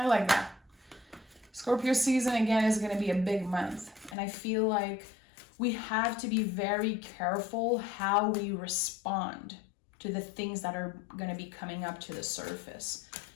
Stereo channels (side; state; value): right; drops out; at 4.2 s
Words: like that. Scorpio season, again, is going to be a big month. And I feel like we have to be very careful how we respond to the things that are going to be coming up to the surface.